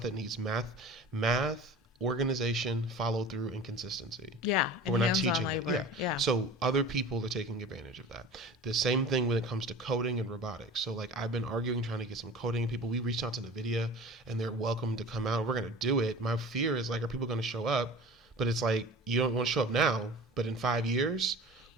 that needs math, organization, follow through, and consistency. Yeah, But and we're not hands-on teaching it. Yeah. labor. Yeah. So other people are taking advantage of that. The same thing when it comes to coding and robotics. So like I've been arguing, trying to get some coding people. We reached out to NVIDIA and they're welcome to come out. We're going to do it. My fear is like, are people going to show up? But it's like, you don't want to show up now, but in 5 years,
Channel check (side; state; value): both; normal; correlation 0.39